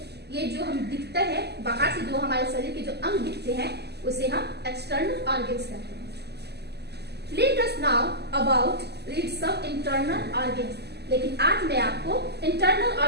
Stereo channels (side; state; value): left; late; 0.48 ms